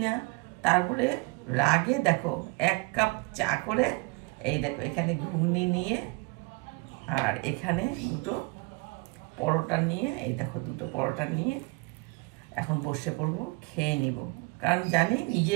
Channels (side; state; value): left; quieter; 27.0 dB